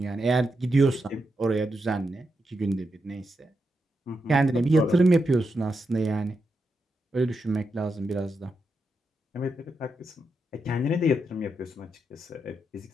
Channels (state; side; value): normal; both; correlation 0.85